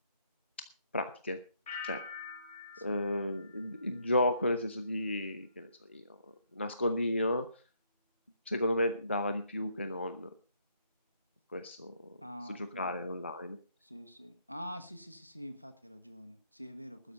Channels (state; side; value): inverted; both; correlation -0.71